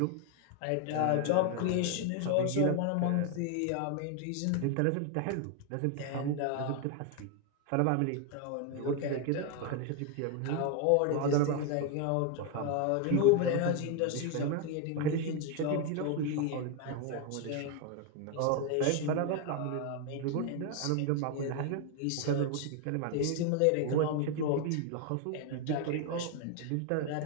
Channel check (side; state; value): both; different; correlation 0.01